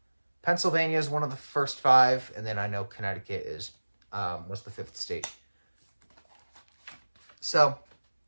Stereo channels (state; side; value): inverted; both; correlation -1.00